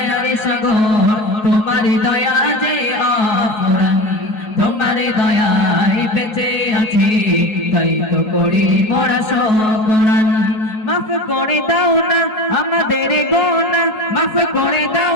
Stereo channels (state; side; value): late; right; 4.7 ms